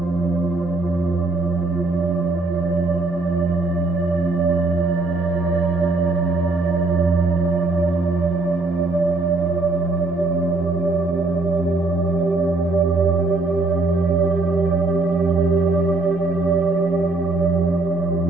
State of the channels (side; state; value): left; quieter; 3.3 dB